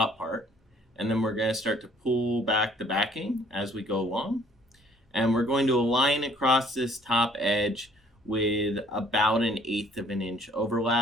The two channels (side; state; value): both; normal; correlation 0.58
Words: part, and then we're going to start to pull back the backing as we go along. And we're going to align across this top edge with about 1/8 of an inch